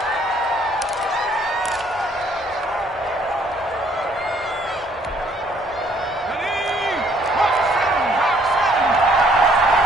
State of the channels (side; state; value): both; normal; correlation 0.63